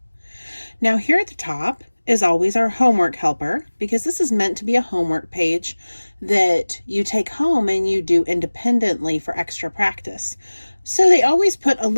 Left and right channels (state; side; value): inverted; both; correlation -1.00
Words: Now here at the top is always our homework helper, because this is meant to be a homework page that you take home and you do independently for extra practice. So they always put a